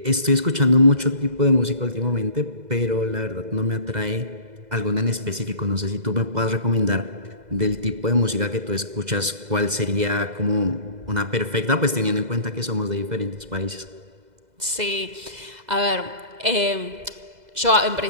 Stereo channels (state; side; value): late; left; 2.0 ms